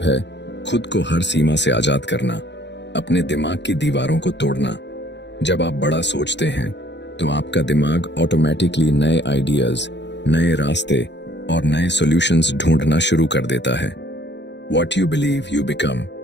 है खुद को हर सीमा से आजाद करना, अपने दिमाग की दीवारों को तोड़ना। जब आप बड़ा सोचते हैं तो आपका दिमाग ऑटोमेटिकली नए आइडियाज, नए रास्ते और नए सॉल्यूशंस ढूंढना शुरू कर देता है। What you believe you become।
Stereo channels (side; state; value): right; late; 0.51 ms